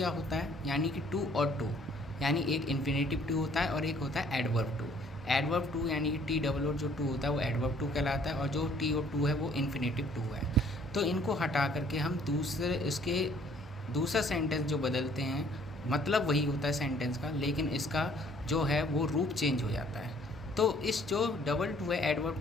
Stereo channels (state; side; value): normal; both; correlation 0.60